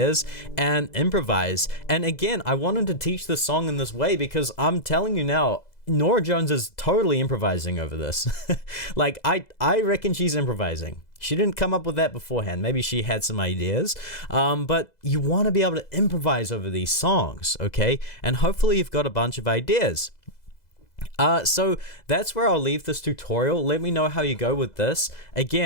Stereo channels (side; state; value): right; late; 2.0 ms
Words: and improvise. And again, I wanted to teach this song in this way because I'm telling you now, Norah Jones is totally improvising over this. Like, I reckon she's improvising. She didn't come up with that beforehand. Maybe she had some ideas, but you want to be able to improvise over these songs, okay? And hopefully you've got a bunch of ideas. So that's where I'll leave this tutorial. Let me know how you go with this.